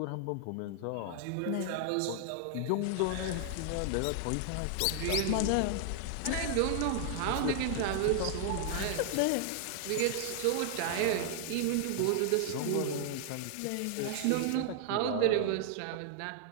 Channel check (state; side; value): different; both; correlation 0.00